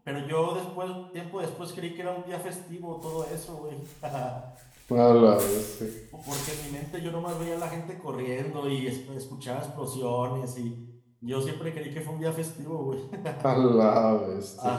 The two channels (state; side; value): identical; both; correlation 1.00